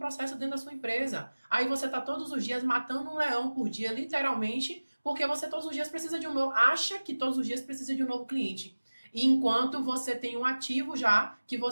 dentro da sua empresa. Aí você está todos os dias matando um leão por dia, literalmente, porque você todos os dias precisa de um novo... Acha que todos os dias precisa de um novo cliente. E enquanto você tem um ativo já, que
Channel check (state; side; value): inverted; both; correlation -1.00